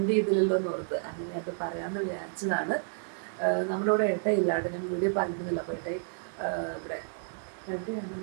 ഇതിലല്ലോ എന്ന് ഓർത്ത് അങ്ങനെ അത് പറയാമെന്ന് വിചാരിച്ചതാണ്. നമ്മുടെ ഇവിടെ ഏട്ടയില്ലാണ്ട് ഞാൻ വീഡിയോ പറഞ്ഞിരുന്നില്ല. അപ്പോൾ ഏട്ടയി ഇവിടെ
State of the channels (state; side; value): silent; left; 57 dB below the other